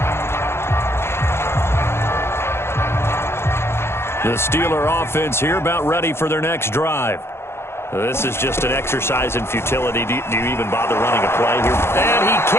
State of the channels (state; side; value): late; right; 0.12 ms